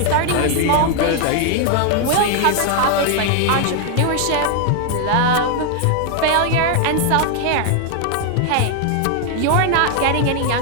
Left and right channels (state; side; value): different; both; correlation 0.00